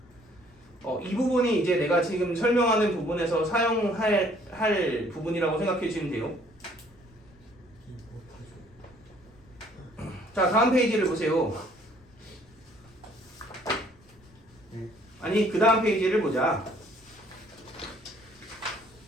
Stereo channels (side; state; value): left; noise; rumble, 28 dB below the sound